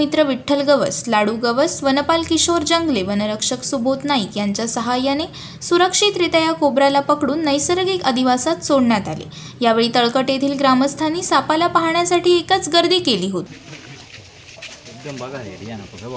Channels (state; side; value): identical; both; correlation 1.00